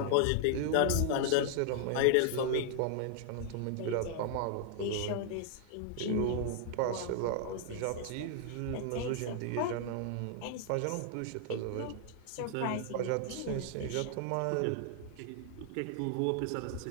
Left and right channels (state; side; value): different; both; correlation 0.00